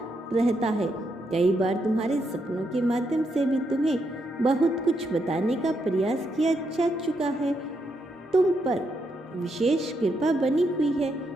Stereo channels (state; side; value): normal; both; correlation 0.80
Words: रहता है। कई बार तुम्हारे सपनों के माध्यम से भी तुम्हें बहुत कुछ बताने का प्रयास किया जा चुका है। तुम पर विशेष कृपा बनी हुई है,